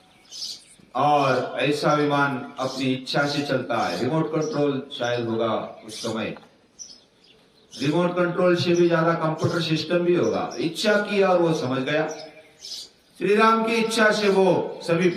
और ऐसा विमान अपनी इच्छा से चलता है। रिमोट कंट्रोल शायद होगा उस समय, रिमोट कंट्रोल से भी ज्यादा कंप्यूटर सिस्टम भी होगा। इच्छा की और वो समझ गया, श्री राम की इच्छा से वो सभी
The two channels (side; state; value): both; identical; correlation 1.00